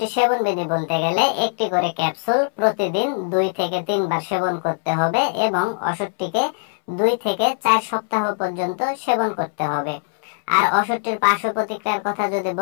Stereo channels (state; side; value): silent; right; 65 dB below the other